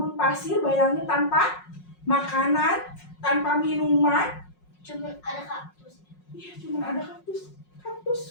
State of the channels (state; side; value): late; right; 5.5 ms